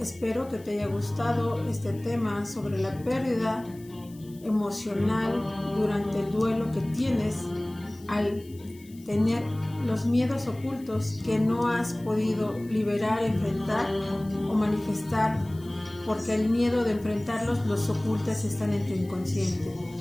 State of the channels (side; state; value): left; noise; hiss, 25 dB below the sound